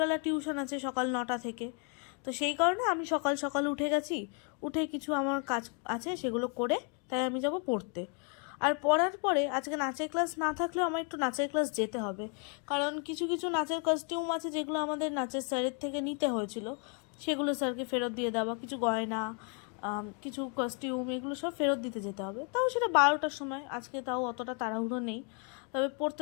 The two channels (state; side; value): quieter; right; 38.0 dB